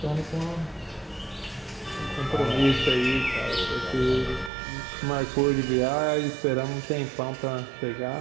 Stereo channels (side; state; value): left; drops out; at 4.5 s